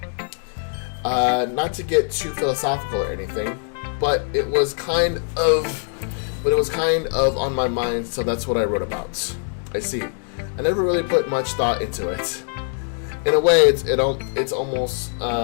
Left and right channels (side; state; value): right; silent; 56 dB below the other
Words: Not to get too philosophical or anything, but it was kind of on my mind, so that's what I wrote about. I see. I never really put much thought into it. In a way, it's almost